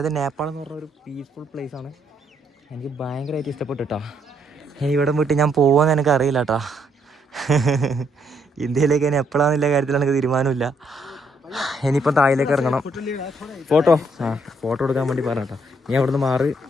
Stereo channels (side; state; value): both; normal; correlation 0.72